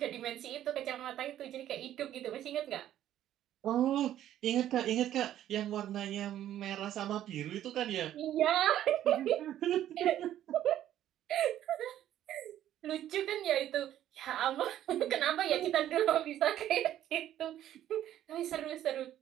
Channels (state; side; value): quieter; left; 11.9 dB